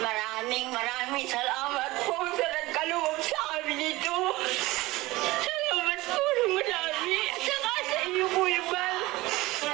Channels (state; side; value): quieter; left; 19.8 dB